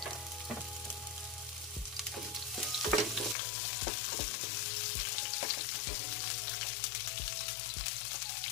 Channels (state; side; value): drops out; right; at 3.4 s